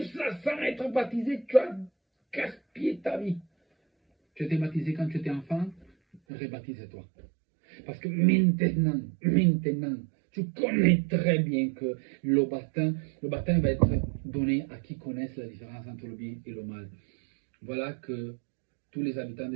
ça sans être baptisé, tu as gaspillé ta vie. Tu étais baptisé quand tu étais enfant, rebaptise-toi. Parce que maintenant, tu connais très bien que le baptême va être donné à qui connaissent la différence entre le bien et le mal. Voilà que tous les habitants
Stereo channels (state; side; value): drops out; left; at 6.2 s